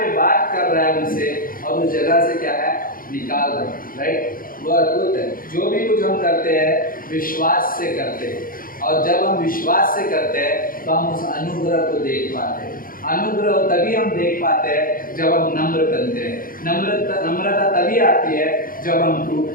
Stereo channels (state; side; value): late; right; 0.41 ms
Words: बात कर रहा है उनसे, और उस जगह से क्या है? निकाल रहा है, राइट। वो अद्भुत है। जो भी कुछ हम करते हैं विश्वास से करते हैं, और जब हम विश्वास से करते हैं तो हम उस अनुग्रह को देख पाते हैं। अनुग्रह तभी हम देख पाते हैं जब हम नम्र बनते हैं। नम्रता तभी आती है जब हम